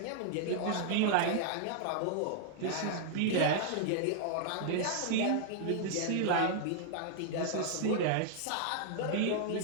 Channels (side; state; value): both; different; correlation -0.01